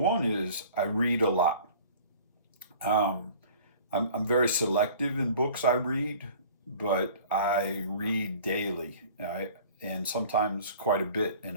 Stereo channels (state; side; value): inverted; both; correlation -0.47